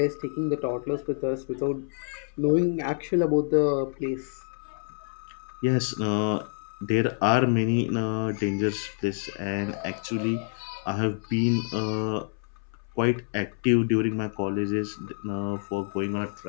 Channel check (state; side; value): silent; right; 60 dB below the other